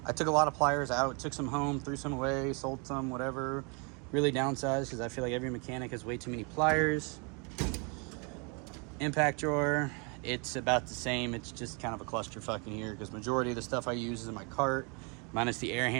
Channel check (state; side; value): quieter; left; 33.4 dB